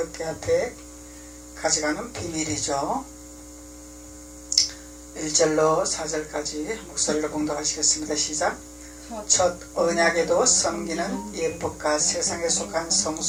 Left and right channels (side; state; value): both; identical; correlation 1.00